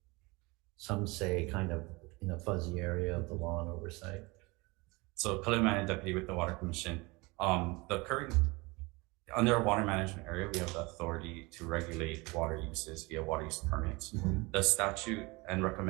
some say kind of in a fuzzy area of the law and oversight? So Kalimani Deputy with the Water Commission. Under our water management area, we have the authority to regulate water uses via water use permits. Mm-hmm. The statute and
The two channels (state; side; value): quieter; left; 25.0 dB